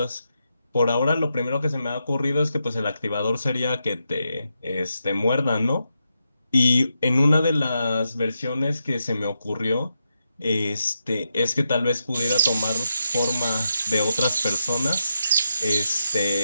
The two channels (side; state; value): both; inverted; correlation -0.85